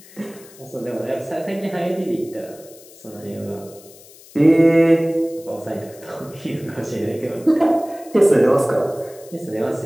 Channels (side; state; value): left; noise; hiss, 22 dB below the sound